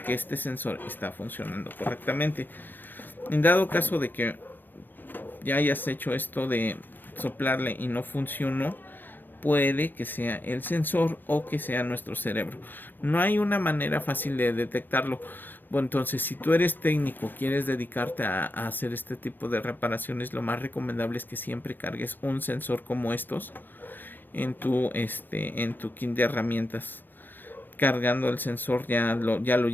que este sensor está funcionando correctamente. En dado caso de que ya hayas hecho esto de soplarle y no funcionó, puede que sea el sensor o que sea nuestro cerebro. No hay una manera fácil de detectarlo. Bueno, entonces, si tú eres técnico, quieres dedicarte a hacer este tipo de reparaciones, lo más recomendable es que siempre cargues un sensor como estos en tu kit de herramientas. Cargando el sensor ya lo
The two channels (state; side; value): late; right; 0.093 ms